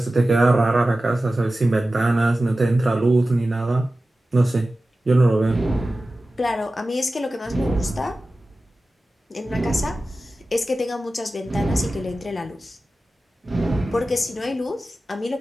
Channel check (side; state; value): both; normal; correlation 0.95